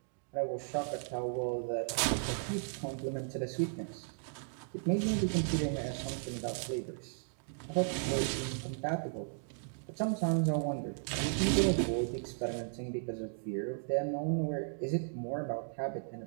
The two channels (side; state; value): left; silent; digital silence